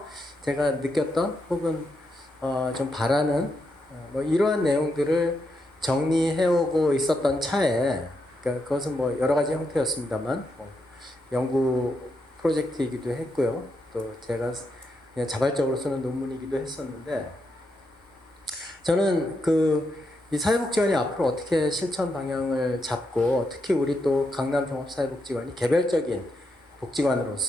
제가 느꼈던 혹은 좀 바라는 뭐 이러한 내용들을 정리해오고 있었던 차에 그러니까 그것은 뭐 여러 가지 형태였습니다만 연구 프로젝트이기도 했고요. 또 제가 그냥 자발적으로 쓰는 논문이기도 했었는데 저는 이 사회복지관이 앞으로 어떻게 실천 방향을 잡고 특히 우리 또 강남 종합사회복지관이 개별적인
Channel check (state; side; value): normal; both; correlation 0.82